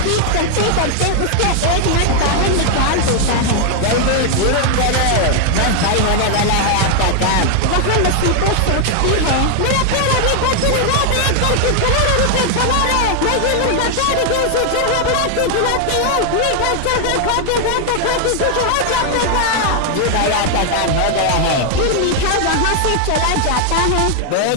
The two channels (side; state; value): both; different; correlation 0.00